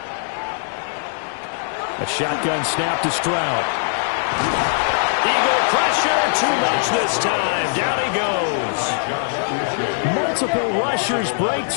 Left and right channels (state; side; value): silent; right; digital silence